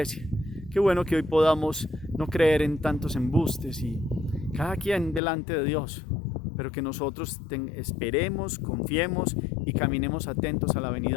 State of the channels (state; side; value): drops out; right; at 5.2 s